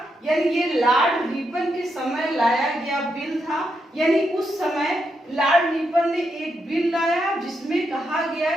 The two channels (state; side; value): normal; both; correlation 0.82